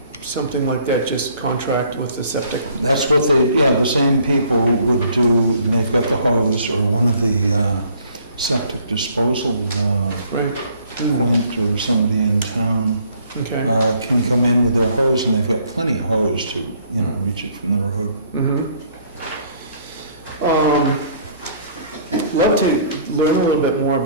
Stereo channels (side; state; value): both; inverted; correlation -0.60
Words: something like that? Just contract with the septic? That's what the same people would do, and they've got the hose, or one of the septic disposal, Right. Quint or somebody in town, Okay. can come in with their hose, and they've got plenty of hose to, reach it from the road. Love to learn a little bit more